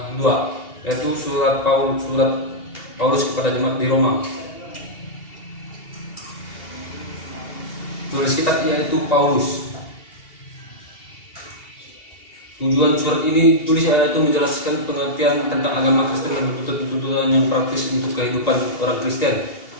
2, yaitu surat Paulus kepada jemaat di Roma. Tulis kitab yaitu Paulus. Tujuan surat ini ditulis yaitu menjelaskan pengertian tentang agama Kristen dan tuntutan yang praktis untuk kehidupan orang Kristen.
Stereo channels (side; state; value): right; late; 2.8 ms